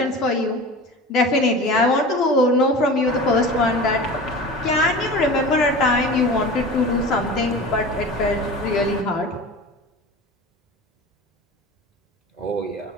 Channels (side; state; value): both; normal; correlation 0.34